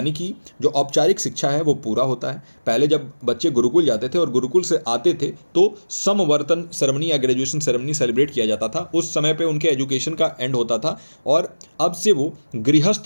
कि जो औपचारिक शिक्षा है वो पूरा होता है। पहले जब बच्चे गुरुकुल जाते थे और गुरुकुल से आते थे तो समवर्तन सेरेमनी या ग्रेजुएशन सेरेमनी सेलिब्रेट किया जाता था। उस समय पे उनके एजुकेशन का एंड होता था और अब से वो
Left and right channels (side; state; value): both; inverted; correlation -1.00